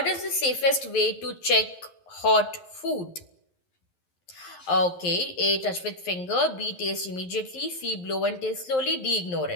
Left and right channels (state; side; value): late; right; 11 ms